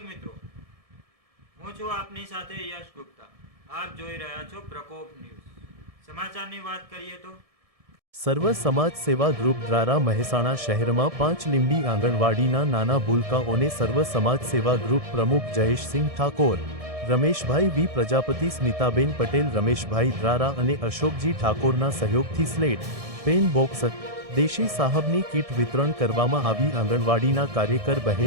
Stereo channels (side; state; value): left; late; 1.7 ms